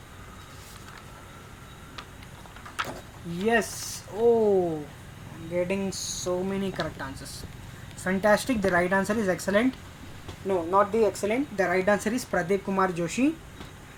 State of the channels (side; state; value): both; identical; correlation 1.00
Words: Yes. Oh, I'm getting so many correct answers. Fantastic. The right answer is excellent. No, not the excellent. The right answer is Pradeep Kumar Joshi.